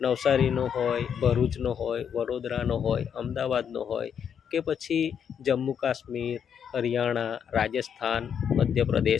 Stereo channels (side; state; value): right; quieter; 7.9 dB